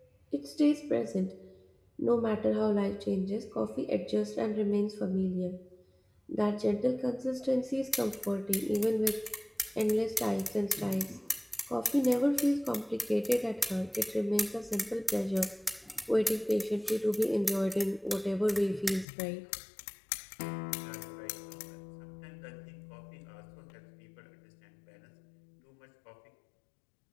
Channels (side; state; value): right; drops out; at 19.1 s